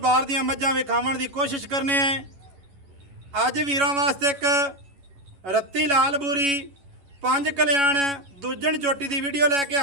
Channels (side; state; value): left; late; 11 ms